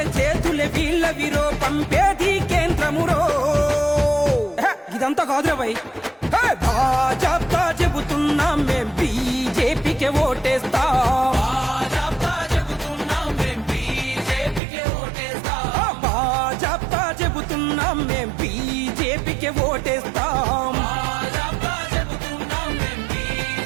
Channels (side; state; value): left; drops out; at 14.6 s